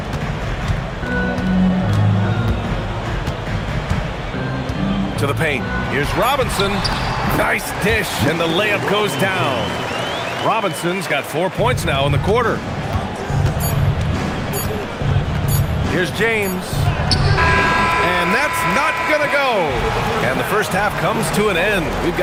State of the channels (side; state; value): both; identical; correlation 1.00